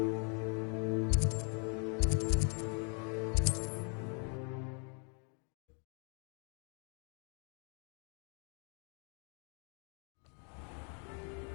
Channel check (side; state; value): right; quieter; 38.9 dB